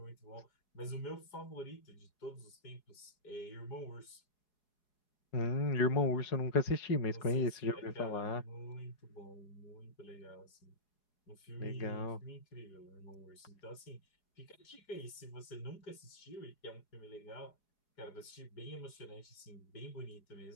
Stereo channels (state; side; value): late; right; 4.8 ms